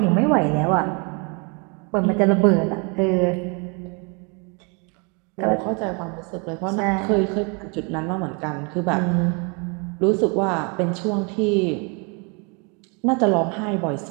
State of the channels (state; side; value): quieter; left; 33.2 dB